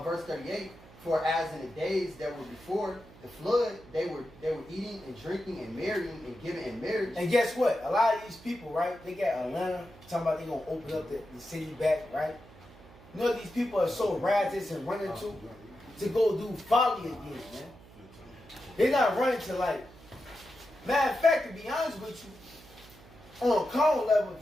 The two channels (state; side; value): noise; right; hum, 22 dB below the sound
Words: verse 38, for as in the days that were before the flood, they were eating and drinking and marrying and giving in marriage. And guess what? A lot of these people, right? They got Atlanta talking about they gonna open up the city back, right? You know these people are so riotous and running to. to go do folly again, man. They're not running to like. Matter of fact, to be honest with you, on a carnal level,